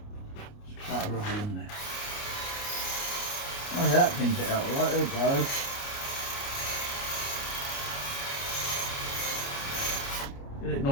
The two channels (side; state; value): right; late; 29 ms